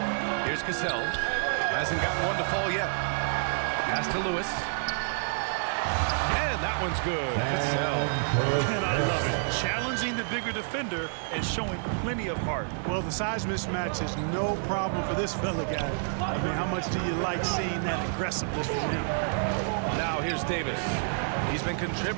Here's Cassell. Hasn't gotten one to fall yet. Pass to Lewis. And that one's good. Cassell. And I love it. Challenging the bigger defender and showing plenty of heart. Well, the size mismatch is no problem for this fella, guy. I mean, how much do you like seeing that aggressiveness from him? Now here's Davis. He's been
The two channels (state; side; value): silent; left; digital silence